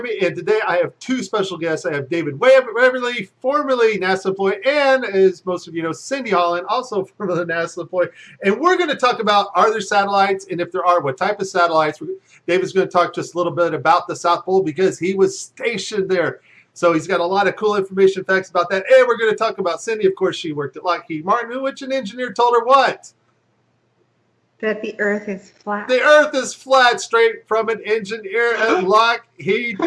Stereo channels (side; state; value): both; identical; correlation 1.00